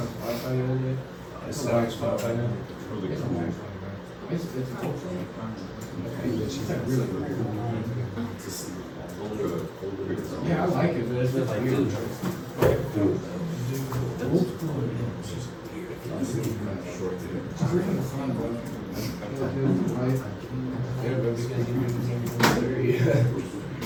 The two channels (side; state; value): both; identical; correlation 1.00